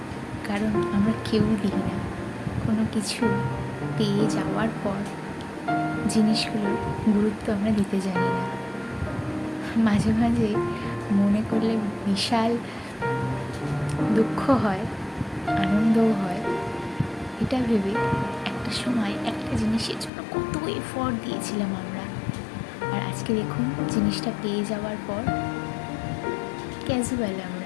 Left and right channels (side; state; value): right; drops out; at 20.1 s